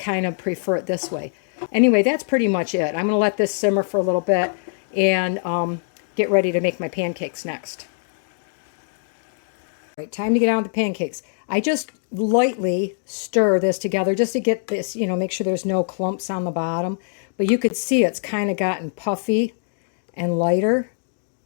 of prefer it this way. Anyway, that's pretty much it. I'm going to let this simmer for a little bit and get ready to make my pancakes next. All right, time to get on with the pancakes. I just lightly stir this together just to get this, you know, make sure there's no clumps on the bottom. But you could see it's kind of gotten puffy and lighter.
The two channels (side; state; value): right; silent; digital silence